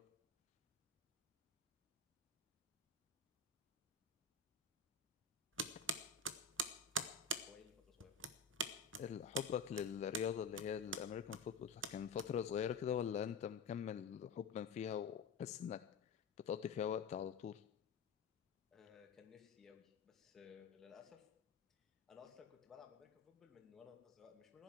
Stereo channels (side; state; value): right; quieter; 4.5 dB